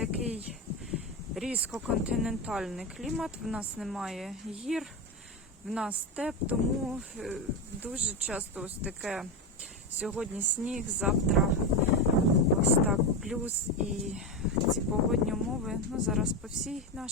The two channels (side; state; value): both; normal; correlation 0.14